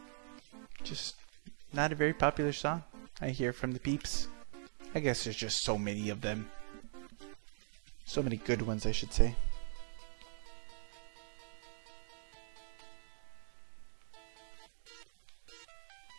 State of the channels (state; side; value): silent; left; digital silence